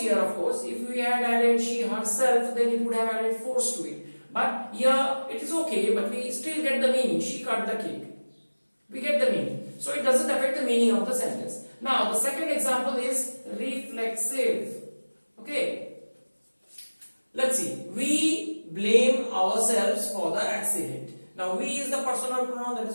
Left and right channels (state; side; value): inverted; both; correlation -1.00